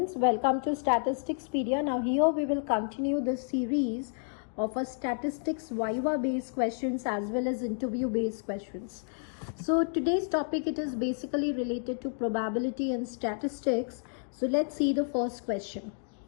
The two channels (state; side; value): silent; right; 57 dB below the other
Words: welcome to Statisticspedia. Now here we will continue the series of a statistics Viva based questions as well as interview based questions. So today's topic, it is basically related to probability and statistics. So let's see the first question.